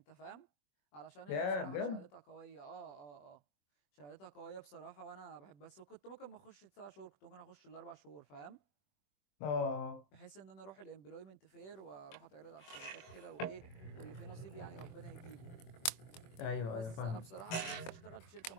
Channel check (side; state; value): right; late; 24 ms